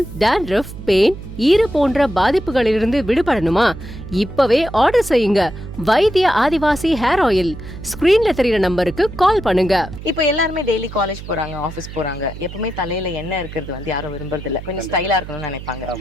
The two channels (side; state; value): right; noise; hum, 12 dB below the sound